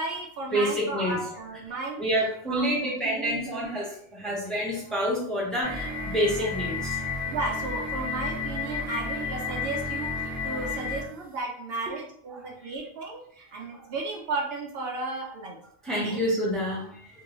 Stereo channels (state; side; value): normal; both; correlation 0.20